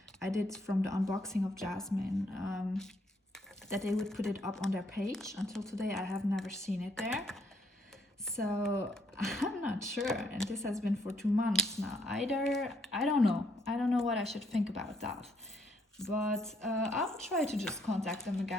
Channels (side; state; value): both; normal; correlation 0.71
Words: I did from the unboxing of Jasmine, that they would put it up on their page. Until today I have never seen it there. So I'm not sure, and this has been for 2 months now. Either, I don't know what I should think about that. But I'll try to just contact them